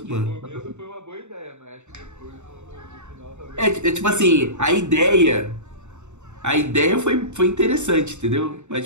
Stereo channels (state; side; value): late; left; 0.83 ms